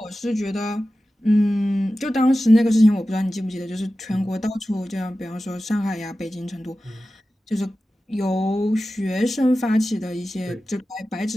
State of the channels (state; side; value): normal; both; correlation 0.94